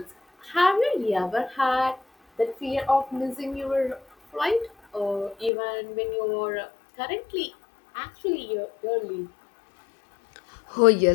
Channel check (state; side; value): drops out; right; at 5.5 s